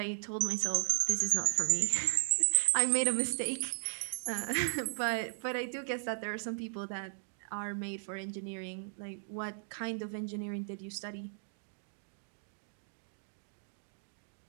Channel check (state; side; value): silent; left; digital silence